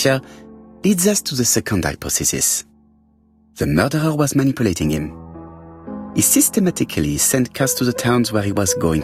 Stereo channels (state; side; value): identical; both; correlation 1.00